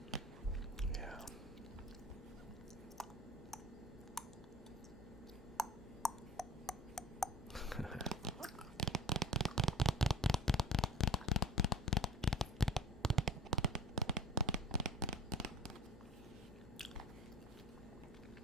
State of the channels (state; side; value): normal; both; correlation 0.38